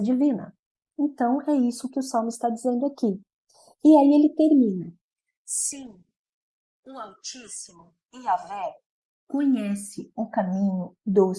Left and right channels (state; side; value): identical; both; correlation 1.00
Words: divina. Então, é isso que o Salmo está dizendo aqui. E aí ele termina. Sim, o Altíssimo, Yahvé, conhece o caminho